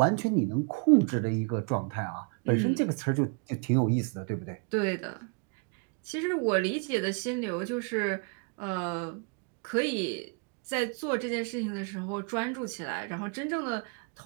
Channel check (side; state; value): left; quieter; 37.3 dB